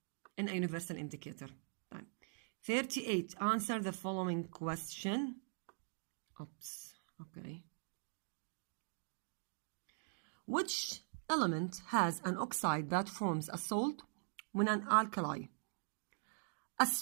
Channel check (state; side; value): silent; left; digital silence